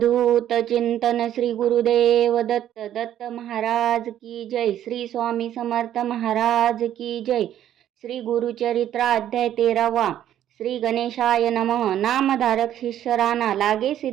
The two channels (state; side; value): quieter; left; 11.3 dB